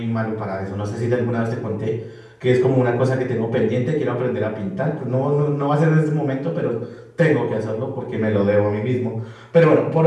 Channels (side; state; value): both; identical; correlation 1.00